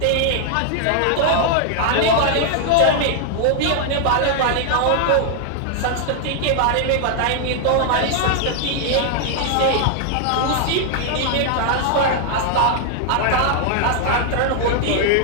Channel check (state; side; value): different; both; correlation 0.00